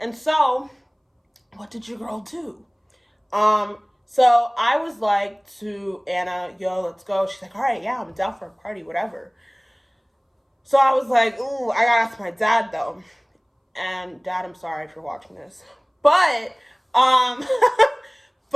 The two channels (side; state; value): both; identical; correlation 1.00